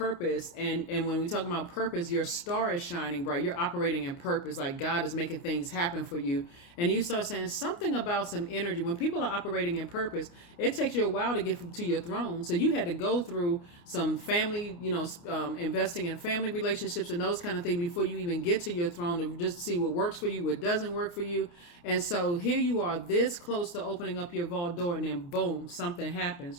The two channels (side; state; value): right; late; 29 ms